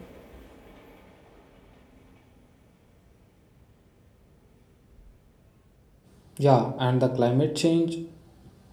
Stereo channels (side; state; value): both; identical; correlation 1.00